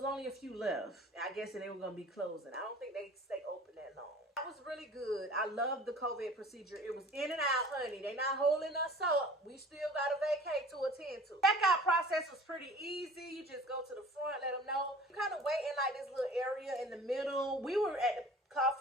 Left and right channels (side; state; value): both; normal; correlation 0.45